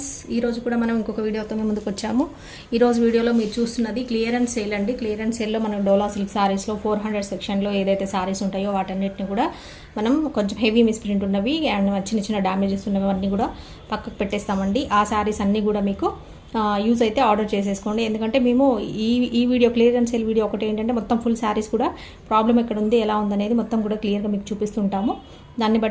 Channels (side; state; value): both; identical; correlation 1.00